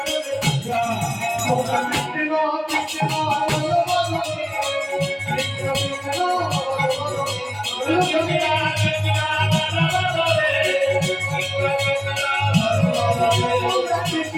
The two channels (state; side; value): identical; both; correlation 1.00